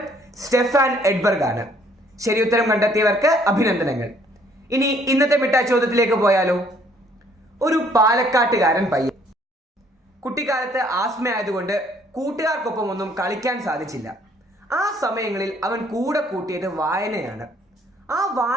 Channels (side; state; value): both; normal; correlation 0.63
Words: സ്റ്റെഫാൻ എഡ്ബർഗ് ആണ്. ശരി ഉത്തരം കണ്ടെത്തിയവർക്ക് അഭിനന്ദനങ്ങൾ. ഇനി ഇന്നത്തെ മിഠായി ചോദ്യത്തിലേക്ക് പോയാലോ. ഒരു പാലക്കാട്ടുകാരൻ പയ്യൻ. കുട്ടിക്കാലത്ത് ആസ്മയായതുകൊണ്ട് കൂട്ടുകാർക്കൊപ്പം ഒന്നും കളിക്കാൻ സാധിച്ചില്ല. ആ സമയങ്ങളിൽ അവൻ കൂടെ കൂട്ടിയത് വായനയാണ്. ആ